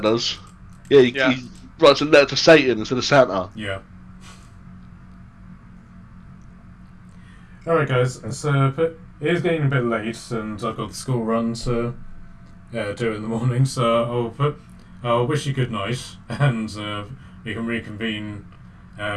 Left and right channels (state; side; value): identical; both; correlation 1.00